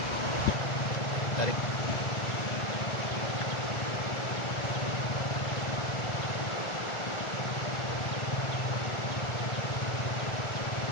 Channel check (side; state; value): right; late; 1.4 ms